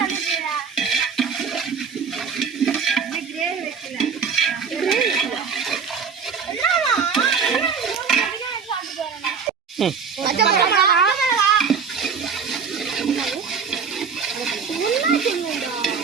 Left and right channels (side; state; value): left; quieter; 6.1 dB